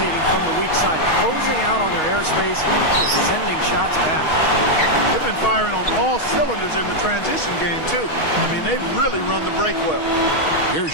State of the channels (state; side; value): late; right; 6.3 ms